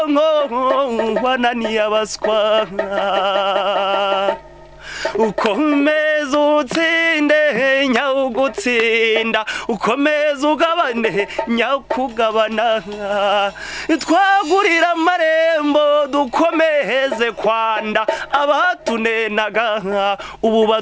wananiye abaswa ukomeza utsinde nyawugutsinda ukomeza ugabane nyakugabana twagurira amarembo dukomeze kwanda abatunenaga ubu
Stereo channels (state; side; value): identical; both; correlation 1.00